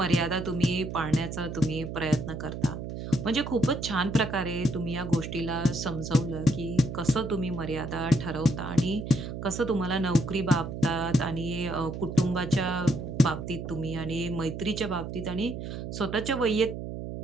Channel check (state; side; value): noise; right; hum, 7 dB below the sound